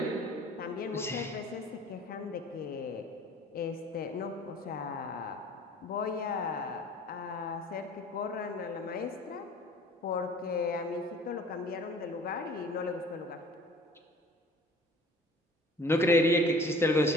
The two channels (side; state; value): both; normal; correlation 0.48